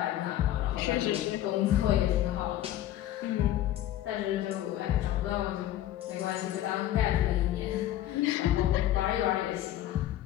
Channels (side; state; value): right; quieter; 13.0 dB